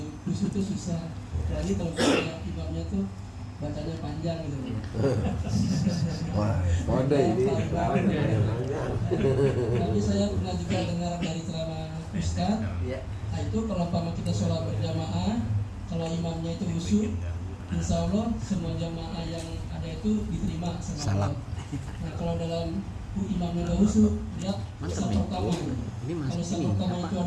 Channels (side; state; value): both; identical; correlation 1.00